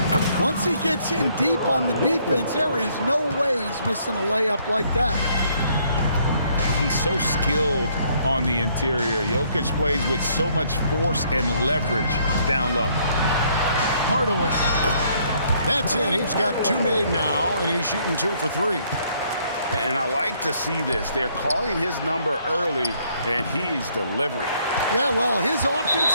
Once he gets in deep on the defense, there is no way he's missing a layup like that. He's so skilled on the interior. Jokic plays with so much force and leverage down low. Hardaway. That's in. He's got 2 made now, and he's shooting 2 for 3. And I like to see this. They're calling his number early, and he's delivering. Yeah, well, his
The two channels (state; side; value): inverted; both; correlation -0.67